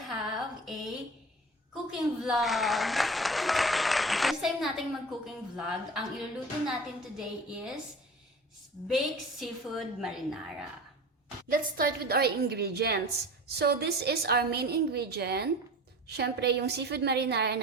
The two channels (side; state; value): both; normal; correlation 0.37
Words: have a cooking vlog. First time nating mag-cooking vlog. Ang iluluto natin today is baked seafood marinara. Let's start with our ingredients. So, this is our main ingredient. Syempre, yung seafood marinara